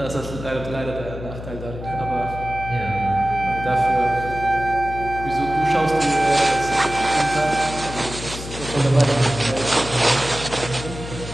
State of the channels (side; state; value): left; noise; hum, 10 dB below the sound